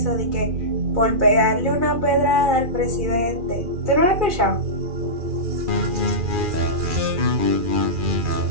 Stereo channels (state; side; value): late; left; 2.4 ms